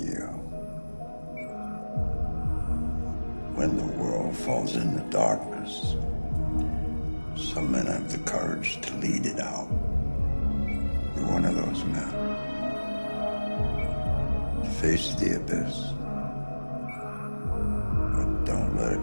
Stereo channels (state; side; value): inverted; both; correlation -1.00